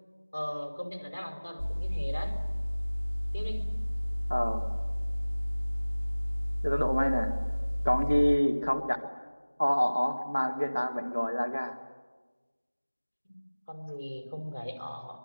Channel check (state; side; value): inverted; both; correlation -1.00